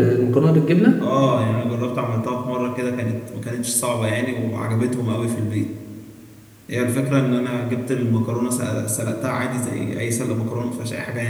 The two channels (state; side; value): identical; both; correlation 1.00